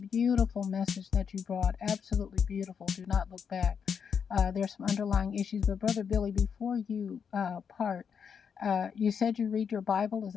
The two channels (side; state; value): right; quieter; 6.9 dB